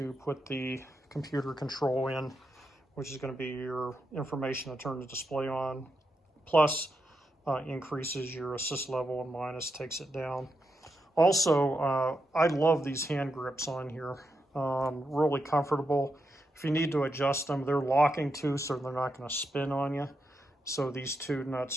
put the computer control in, which is going to be your information to turn the display on, plus increases your assist level, and minus takes it down. Also, I love these hand grips on here, really comfortable. If you need to adjust them, they're locking too, so they're not going to spin on you. So these 2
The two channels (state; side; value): normal; both; correlation 0.85